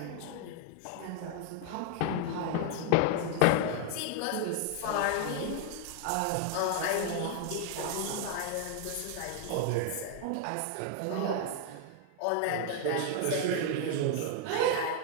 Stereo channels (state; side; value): different; both; correlation 0.00